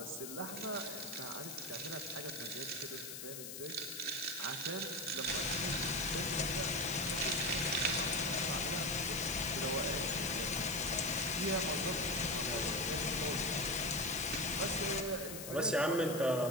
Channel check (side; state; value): left; noise; hiss, 8 dB below the sound